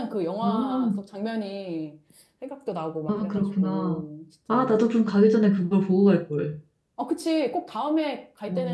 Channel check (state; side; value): identical; both; correlation 1.00